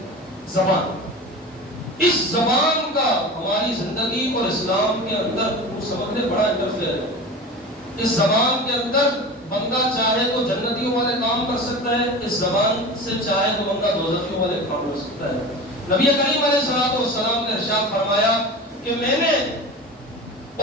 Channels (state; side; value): normal; both; correlation 0.32